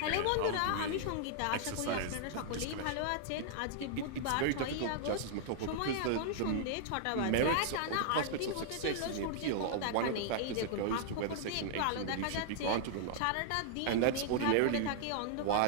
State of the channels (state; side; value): different; both; correlation -0.01